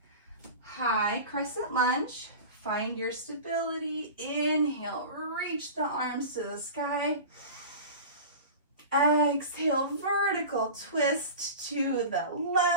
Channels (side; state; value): both; inverted; correlation -0.33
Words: High crescent lunge. Find your stability. Inhale, reach the arms to the sky. Exhale, vertical twist to the